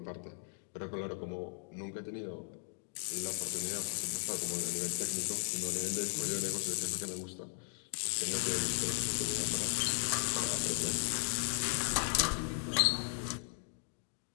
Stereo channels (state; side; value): silent; right; 53 dB below the other